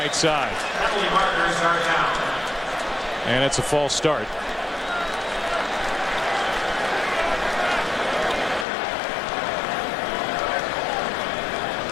side. And it's a false start.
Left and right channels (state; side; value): drops out; right; at 8.7 s